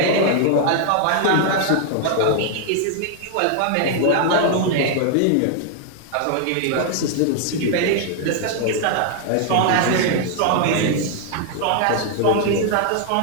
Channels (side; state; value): both; different; correlation 0.00